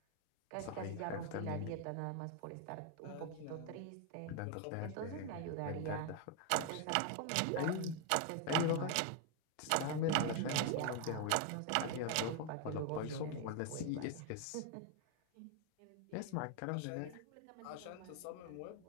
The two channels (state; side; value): different; both; correlation 0.01